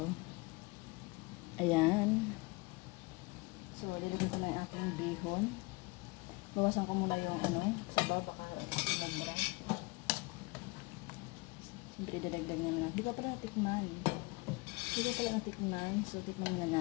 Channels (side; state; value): right; quieter; 25.8 dB